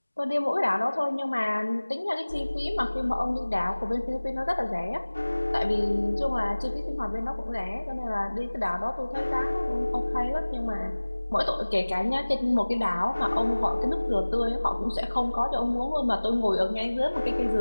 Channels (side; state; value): both; inverted; correlation -1.00